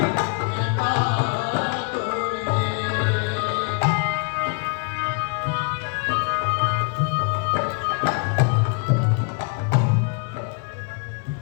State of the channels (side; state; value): right; quieter; 38.6 dB